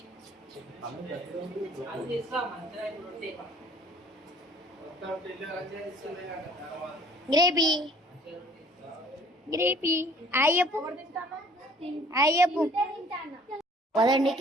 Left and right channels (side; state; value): both; normal; correlation 0.54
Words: గ్రేపీ అయ్యప్పు పదండి.